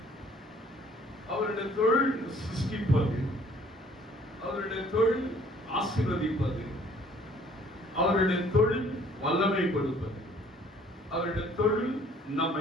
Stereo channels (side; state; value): both; normal; correlation 0.58